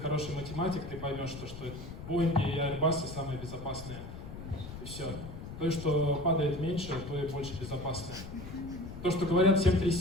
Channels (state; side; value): noise; left; rumble, 11 dB below the sound